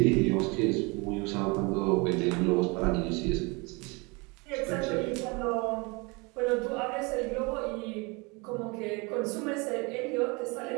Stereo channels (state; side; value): quieter; left; 28.2 dB